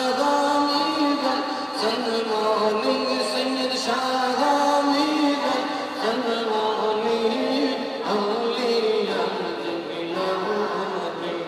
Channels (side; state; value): both; identical; correlation 1.00